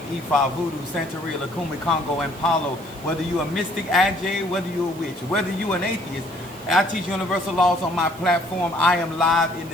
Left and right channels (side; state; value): right; noise; hiss, 22 dB below the sound